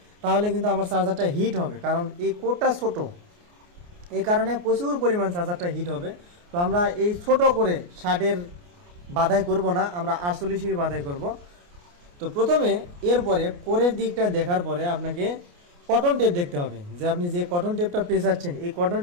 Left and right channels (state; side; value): late; left; 29 ms